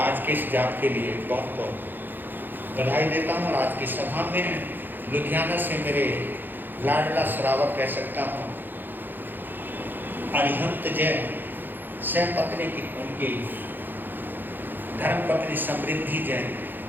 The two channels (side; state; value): left; late; 0.091 ms